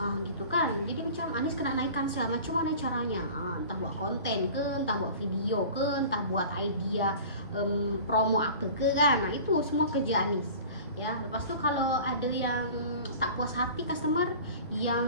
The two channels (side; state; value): both; inverted; correlation -0.41